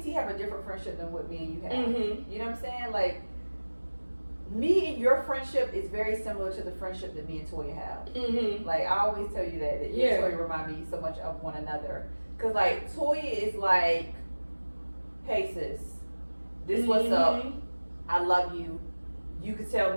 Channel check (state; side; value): inverted; both; correlation -1.00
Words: have a different friendship than what me and you have. Mm-hmm. You know what I'm saying? Like, me and your friendship is very similar to the friendship that me and Toya have. Mm-hmm. Like, I always tell you that you and Toya remind me so much of one another. Because, like, Toya is like, hey, sis, this what's up. I love you. You could tell